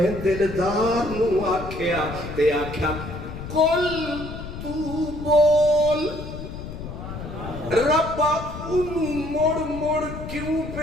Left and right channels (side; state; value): left; noise; rumble, 9 dB below the sound